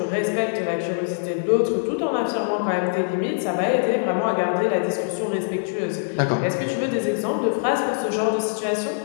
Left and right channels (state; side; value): silent; right; 59 dB below the other